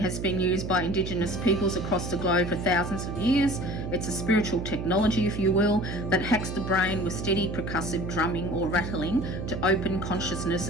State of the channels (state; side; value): noise; right; hum, 5 dB below the sound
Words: been used by Indigenous peoples across the globe for thousands of years. It's a spiritual technology, if you will, that hacks the brain with steady percussive drumming or rattling to open consciousness